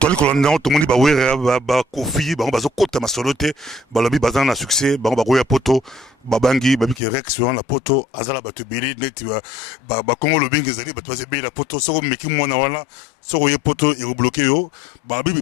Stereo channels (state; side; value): drops out; right; at 7.0 s